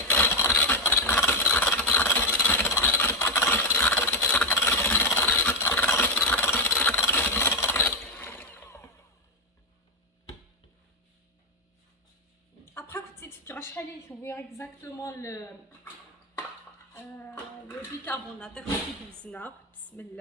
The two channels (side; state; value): both; normal; correlation 0.05